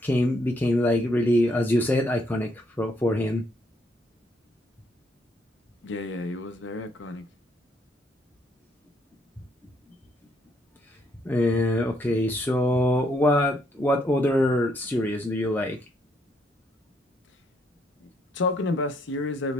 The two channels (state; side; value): normal; both; correlation 0.72